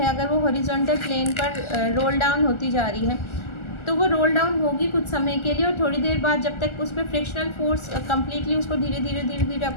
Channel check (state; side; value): late; right; 1.4 ms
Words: अगर वो हॉरिजॉन्टल प्लेन पर रोल डाउन होती जा रही है तो वो रोल डाउन होगी कुछ समय के लिए, और थोड़ी देर बाद जब तक उस पर फ्रिक्शनल फोर्स कम्प्लीटली उसको धीरे धीरे